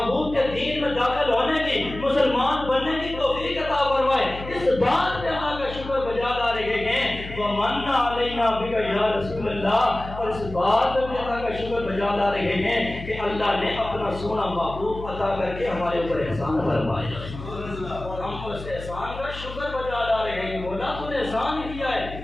کے دین میں داخل ہونے کی، مسلمان بننے کی توفیق عطا فرمائے، اس بات پہ اللہ کا شکر بجا لا رہے ہیں۔ ومن علینا بک یا رسول اللہ، اور اس بات پہ بھی اللہ کا شکر بجا لا رہے ہیں کہ اللہ نے اپنا سونا محبوب عطا کر کے ہمارے اوپر احسان فرمایا، ہم اس احسان کا شکر بجا لا رہے ہیں۔ مولا تو نے احسان کیا ہے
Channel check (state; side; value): noise; left; hum, 12 dB below the sound